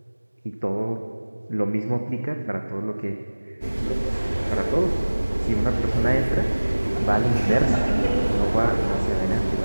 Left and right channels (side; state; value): both; inverted; correlation -1.00